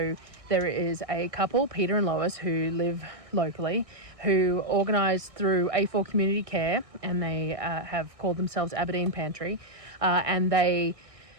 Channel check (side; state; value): left; late; 1.6 ms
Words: there is a couple, Peter and Lois, who live locally, who organise through A4 Community Care, and they have called themselves Aberdeen Pantry, and they